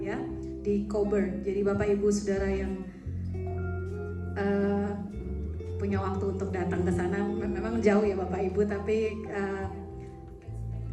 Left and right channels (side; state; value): both; identical; correlation 1.00